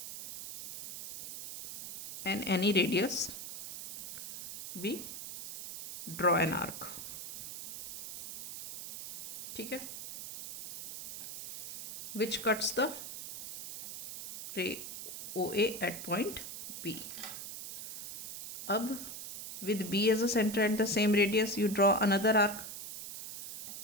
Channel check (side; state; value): right; noise; hiss, 9 dB below the sound